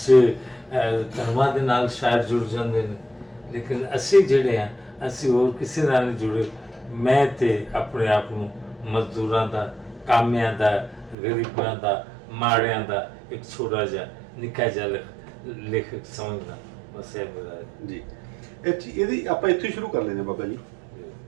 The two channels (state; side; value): drops out; left; at 11.2 s